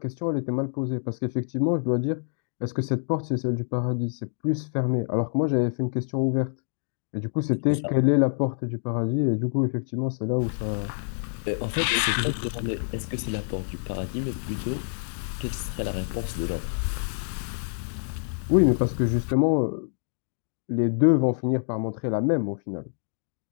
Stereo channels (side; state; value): right; silent; digital silence